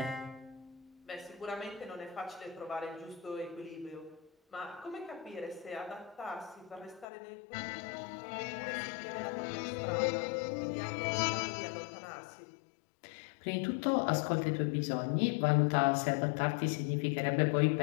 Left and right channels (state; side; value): drops out; right; at 7.1 s